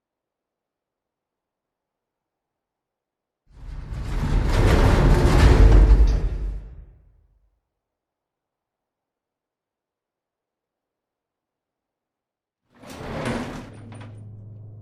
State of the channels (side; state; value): both; identical; correlation 1.00